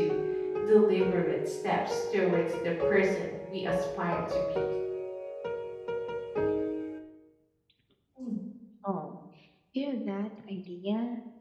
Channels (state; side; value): identical; both; correlation 1.00